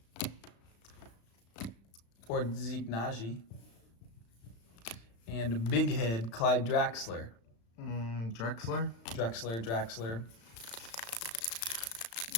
Or Zeke Naji. And big head, Clyde Draxler. Drexler? Draxler.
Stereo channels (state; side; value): late; right; 35 ms